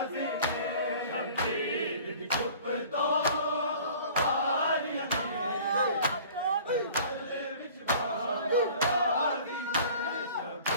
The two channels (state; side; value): inverted; both; correlation -0.47